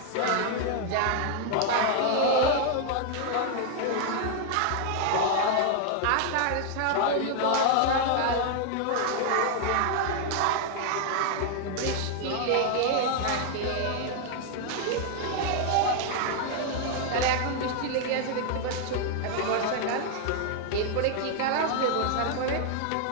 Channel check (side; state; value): both; different; correlation 0.00